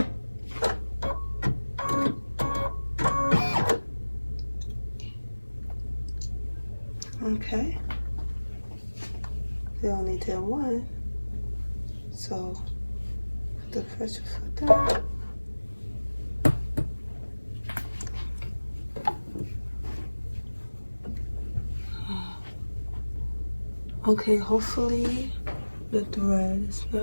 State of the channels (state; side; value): inverted; both; correlation -1.00